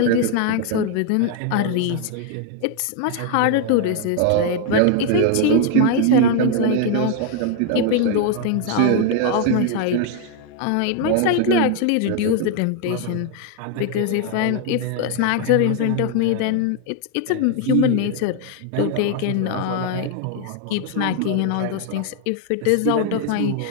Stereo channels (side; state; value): both; different; correlation 0.00